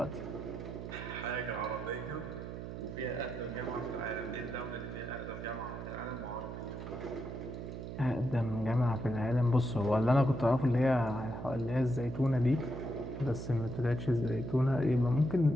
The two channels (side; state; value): right; noise; hum, 8 dB below the sound